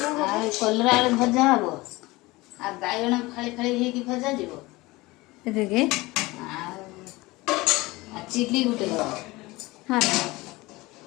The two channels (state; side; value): quieter; right; 21.2 dB